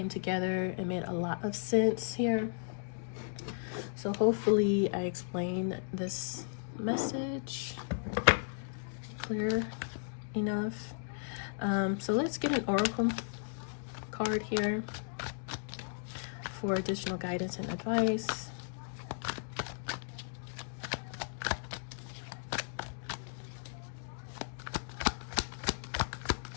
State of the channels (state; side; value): silent; right; digital silence